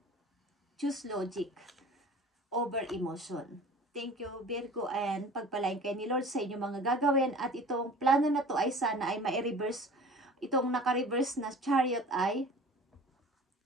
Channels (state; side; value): normal; both; correlation 0.43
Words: Choose logic over emotion. Thank you, Virgo, and pagpalain kayo ni Lord sa inyong mga gagawin. At itong plano na to ay sana ay ma-reverse. Itong naka-reverse na chariot ay